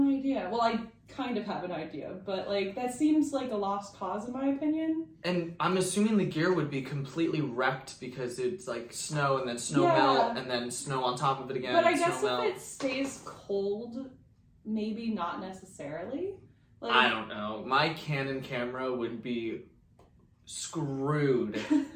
idea. Well, I kind of have an idea, but, like, that seems like a lost cause in my opinion. And I'm assuming the gear would be completely wrecked because it's like snow and then snow melt and then snow on top of it again. But I and guess snow if melt. it stays cold, maybe not necessarily. Like, I don't know. My Canon camera would be screwed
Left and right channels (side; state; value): both; identical; correlation 1.00